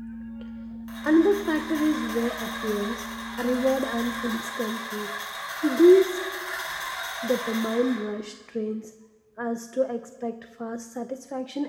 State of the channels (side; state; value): both; identical; correlation 1.00